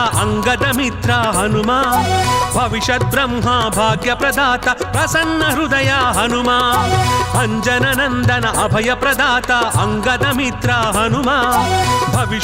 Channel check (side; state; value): both; identical; correlation 1.00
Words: అంగద మిత్ర హనుమా భవిష్యత్ బ్రహ్మ భాగ్య ప్రదాత ప్రసన్న హృదయ హనుమా అంజన నందన అభయ ప్రదాత అంగద మిత్ర హనుమా